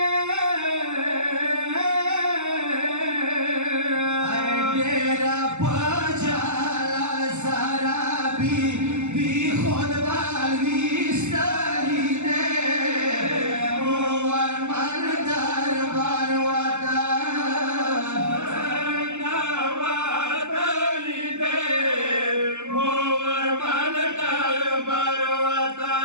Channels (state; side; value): late; left; 0.83 ms